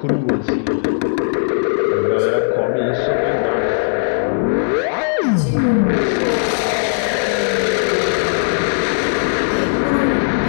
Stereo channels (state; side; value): silent; right; digital silence